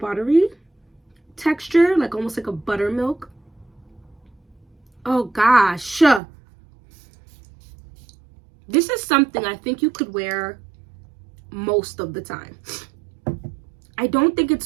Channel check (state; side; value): drops out; left; at 6.2 s